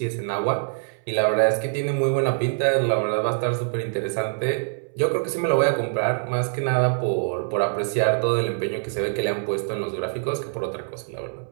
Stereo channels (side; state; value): left; silent; 62 dB below the other